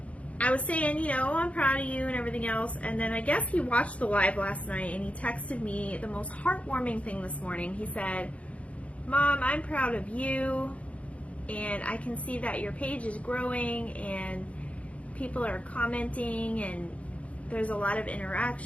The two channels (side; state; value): right; late; 0.064 ms